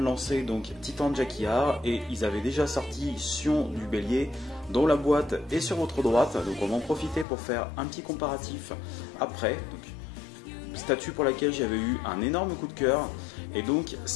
lancer donc Titan Jacquillard, et ils avaient déjà sorti Sion du Bélier, dont la boîte est sur votre droite, donc on va en profiter pour faire un petit comparatif après. Donc, statue pour laquelle j'avais eu un énorme coup de cœur, et donc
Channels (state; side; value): drops out; right; at 7.2 s